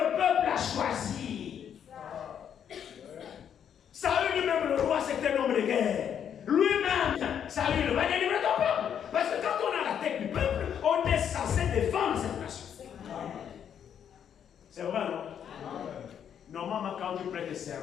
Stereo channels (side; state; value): right; quieter; 8.7 dB